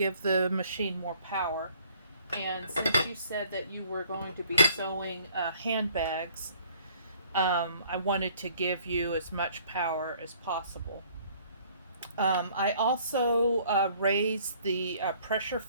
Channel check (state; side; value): inverted; both; correlation -0.58